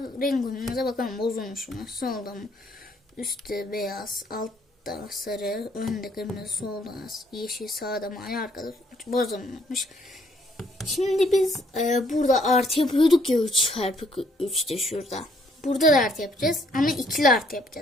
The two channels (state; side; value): normal; both; correlation 0.66